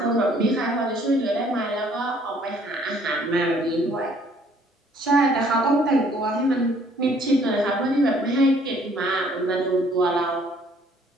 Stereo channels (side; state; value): both; normal; correlation 0.61